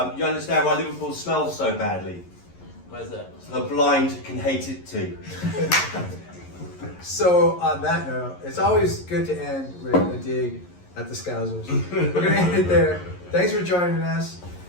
You understand why Liverpool smells so badly? that. Why is that? So the blind can hate it too. So on that note, it's always good to end with a dig at the Scousers. We're gonna end it there. Thanks for joining us.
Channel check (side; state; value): right; late; 11 ms